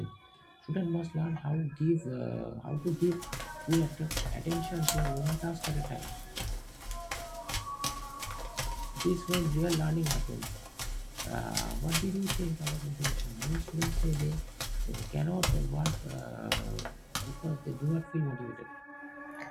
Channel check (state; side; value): identical; both; correlation 1.00